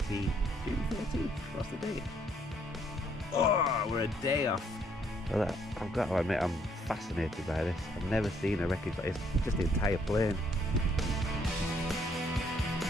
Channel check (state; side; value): normal; both; correlation 0.68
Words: June 13th? What's the date? Oh, we're a day off. Well, I've got to admit, I'm fascinated by this. I've never seen a wreckage like this. Just the entire plane.